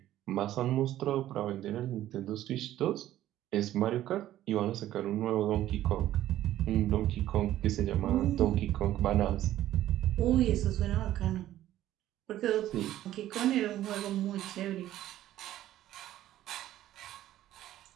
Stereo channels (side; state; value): left; quieter; 13.4 dB